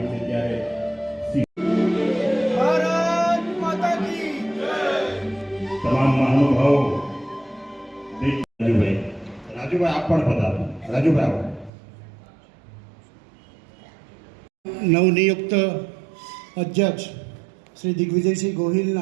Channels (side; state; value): left; drops out; at 11.7 s